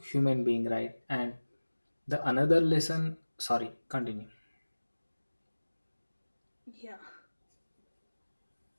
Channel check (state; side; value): inverted; both; correlation -1.00